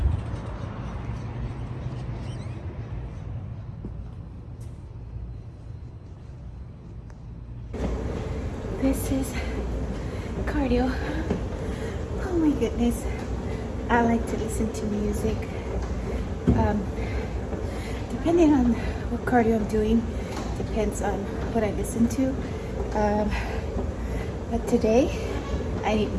This is cardio. Oh my goodness. I like to listen to music. Depending on what cardio I'm doing, depends on what I listen to. But today, I need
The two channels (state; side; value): identical; both; correlation 1.00